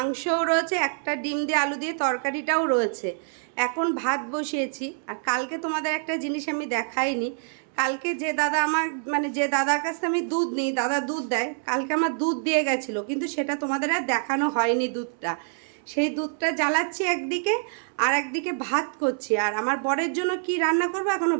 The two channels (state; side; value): silent; left; 61 dB below the other